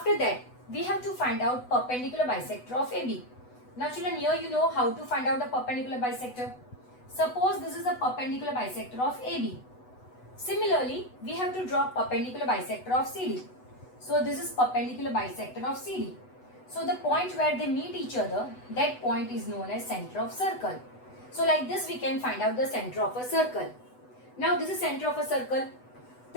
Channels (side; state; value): right; late; 8.0 ms